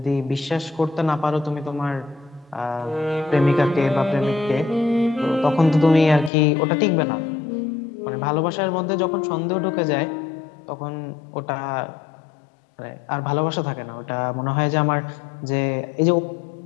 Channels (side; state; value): right; drops out; at 6.3 s